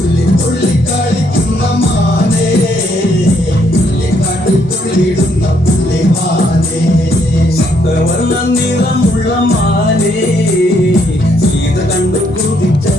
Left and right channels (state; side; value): normal; both; correlation 0.71